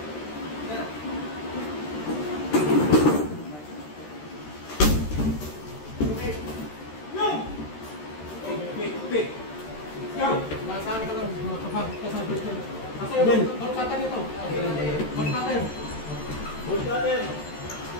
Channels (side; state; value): right; late; 13 ms